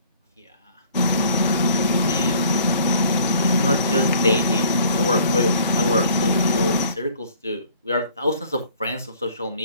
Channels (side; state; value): both; inverted; correlation -0.54